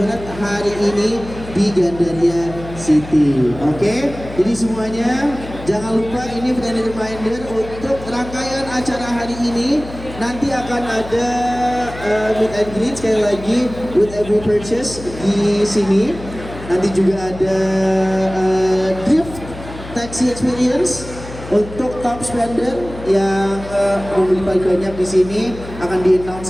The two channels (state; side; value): noise; left; hum, 14 dB below the sound